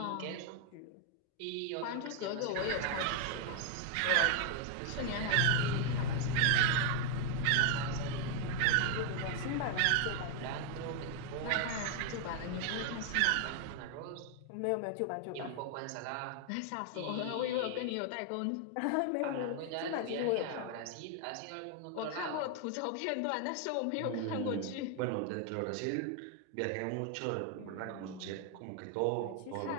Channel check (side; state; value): both; different; correlation 0.00